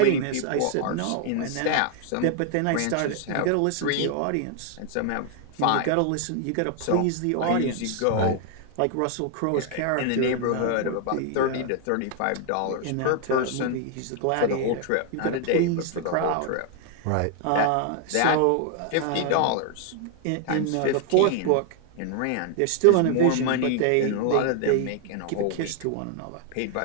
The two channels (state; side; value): different; both; correlation 0.00